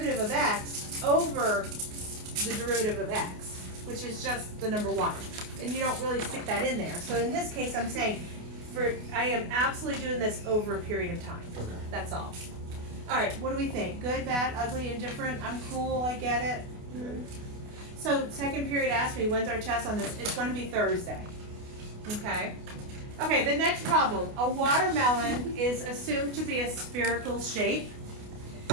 of x over the derivative of x, which is just the number 1. And you don't really stick that in there. So in this case, I'm saying, I am absolutely doing this over a period of time. Okay. That's all. All right, what do we think? Good, bad, ugly, indifferent? I'm cool, I get it. So second period asked me, when's our test on this? It's going to be Thursday. Okay? Okay, the next problem. A watermelon is assumed to be a spherical shape.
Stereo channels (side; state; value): left; late; 28 ms